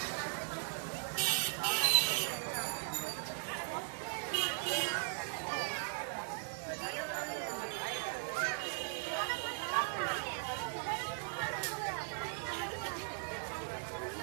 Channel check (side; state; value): left; silent; 52 dB below the other